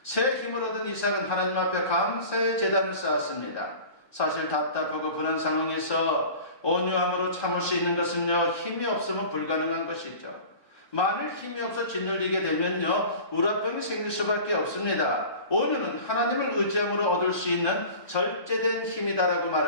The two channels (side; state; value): right; late; 1.1 ms